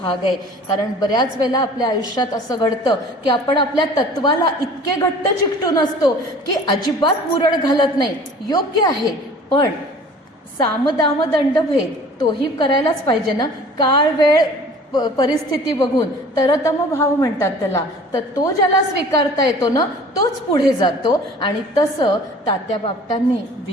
आहे. कारण बऱ्याच वेळेला आपल्या आयुष्यात असं घडतं की आपण आपल्या तत्वाला इतके घट्ट चिकटून असतो की अजिबात मुरड घालत नाही. योग्य आहे, पण सामदाम दंडभेद तोही करायलाच पाहिजे ना. काळ वेळ परिस्थिती बघून तरतम भाव म्हणतात त्याला, तर तो ज्याला स्वीकारता येतो ना तोच पुढे जातो. आणि तसं तात्या बापटांनी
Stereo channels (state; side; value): normal; both; correlation 0.46